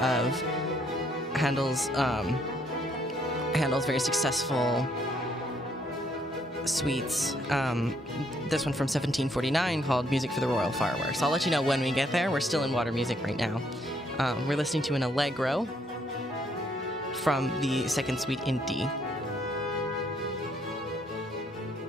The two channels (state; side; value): normal; both; correlation 0.69